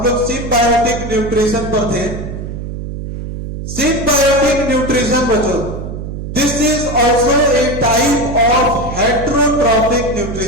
लोग सिम्बायोटिक न्यूट्रिशन पर थे। सिम्बायोटिक न्यूट्रिशन बच्चों, this is also a type of heterotrophic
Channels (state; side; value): noise; right; hum, 7 dB below the sound